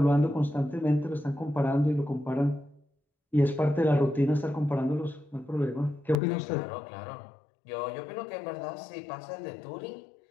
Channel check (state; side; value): drops out; right; at 6.2 s